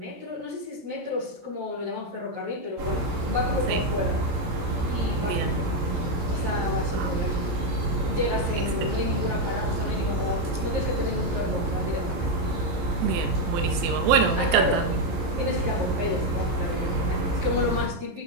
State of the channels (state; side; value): late; left; 17 ms